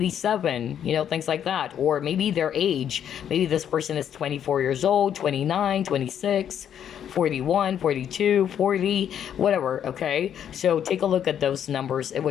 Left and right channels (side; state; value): right; quieter; 9.3 dB